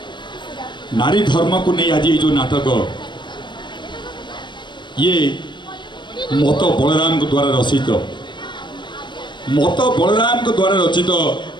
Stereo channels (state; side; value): late; right; 0.22 ms